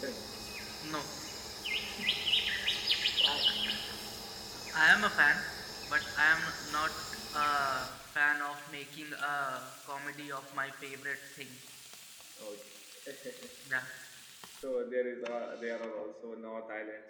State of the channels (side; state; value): both; identical; correlation 1.00